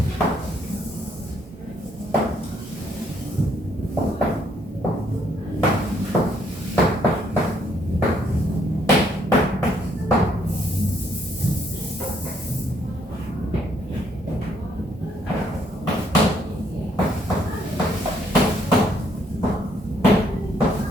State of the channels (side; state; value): both; normal; correlation 0.69